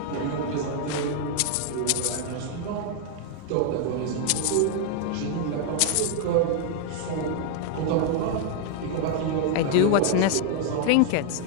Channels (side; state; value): both; different; correlation 0.00